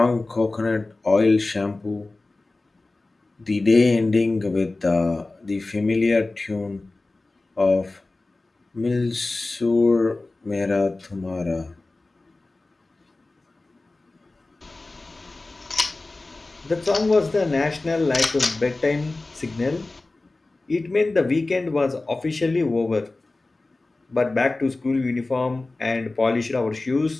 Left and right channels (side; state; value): right; quieter; 3.2 dB